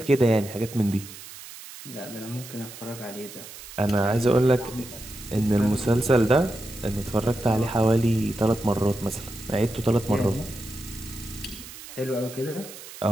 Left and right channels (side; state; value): right; noise; hiss, 15 dB below the sound